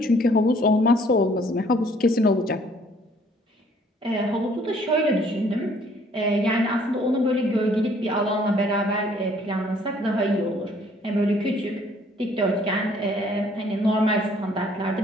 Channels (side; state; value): both; normal; correlation 0.60